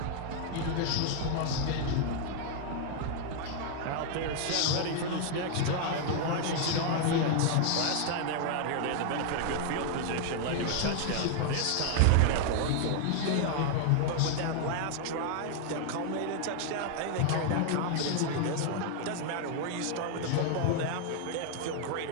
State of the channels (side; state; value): both; different; correlation 0.00